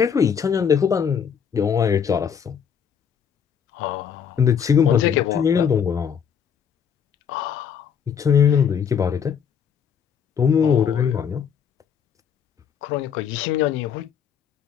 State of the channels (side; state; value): right; quieter; 7.5 dB